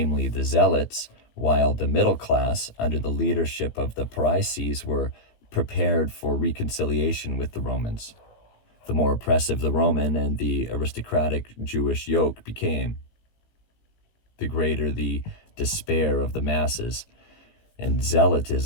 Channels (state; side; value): late; right; 18 ms